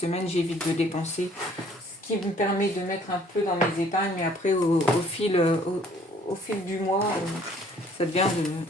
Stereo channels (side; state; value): both; normal; correlation 0.59